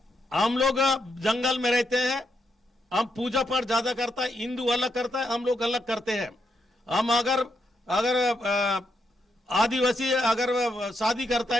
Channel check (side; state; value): both; normal; correlation 0.80